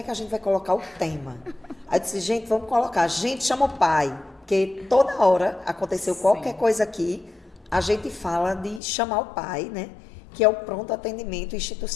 que a gente vai colocar o tema? Aí eu disse, gente, vamos colocar, a gente chama o pai, porque toda hora aconteceu qualquer coisa aqui, a gente fala de chamar o pai, né? Que é o pronto atendimento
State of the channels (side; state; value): right; drops out; at 8.8 s